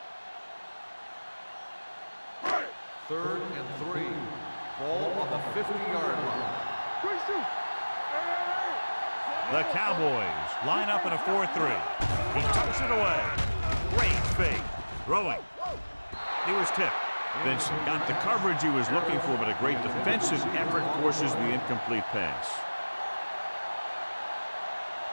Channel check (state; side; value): inverted; both; correlation -1.00